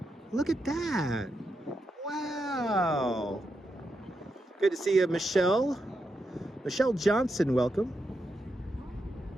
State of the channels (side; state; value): both; normal; correlation 0.85